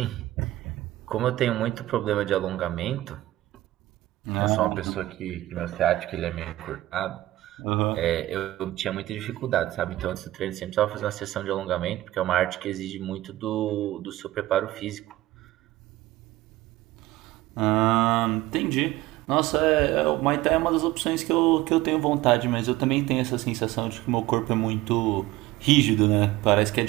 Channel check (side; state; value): left; quieter; 16.7 dB